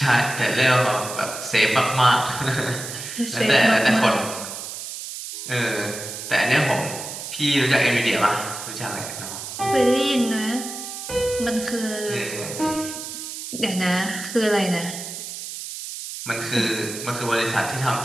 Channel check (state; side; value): noise; right; hiss, 8 dB below the sound